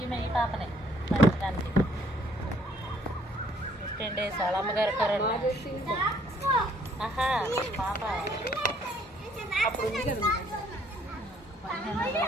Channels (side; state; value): both; normal; correlation 0.64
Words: ఈమె ఈ పాపనే పంచడానికి 15 days వాళ్ళ అమ్మగారు కరోనా. ఆహా పాప అప్పుడు ఉంది కదా 15